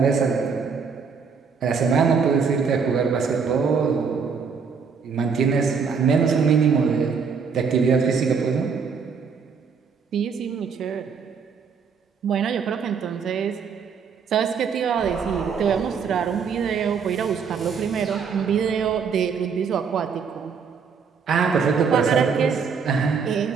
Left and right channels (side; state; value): left; quieter; 6.0 dB